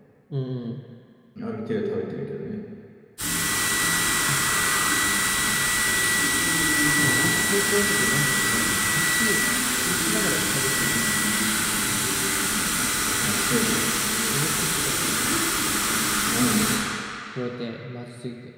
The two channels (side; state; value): both; identical; correlation 1.00